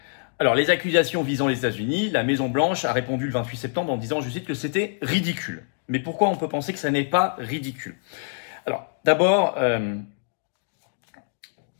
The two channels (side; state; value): right; silent; digital silence